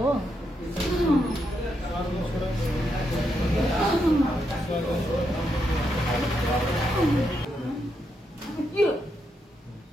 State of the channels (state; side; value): normal; both; correlation 0.81